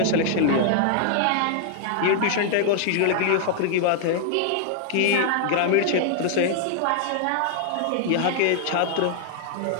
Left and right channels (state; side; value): different; both; correlation 0.00